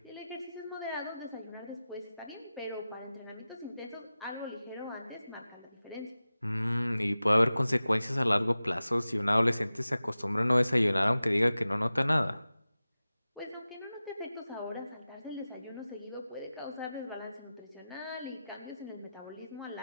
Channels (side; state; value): both; inverted; correlation -0.95